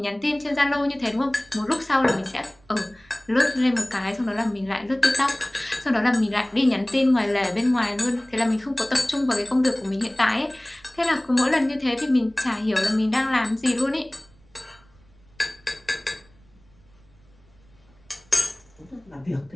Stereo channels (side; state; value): right; noise; rumble, 29 dB below the sound